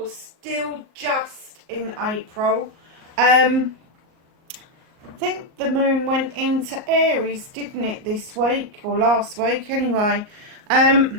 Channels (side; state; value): left; late; 38 ms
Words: still just in April. I think the moon went into Aries, didn't it, this week or last week anyway.